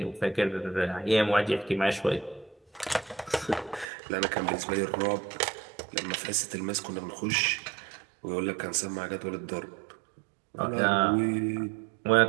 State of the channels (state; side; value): drops out; left; at 3.9 s